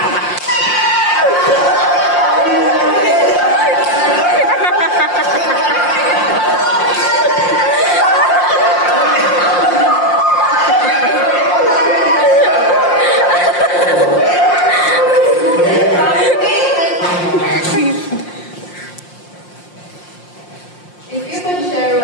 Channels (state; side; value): late; right; 5.7 ms